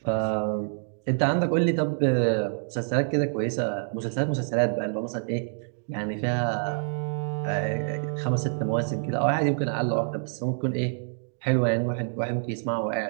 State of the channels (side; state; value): left; silent; digital silence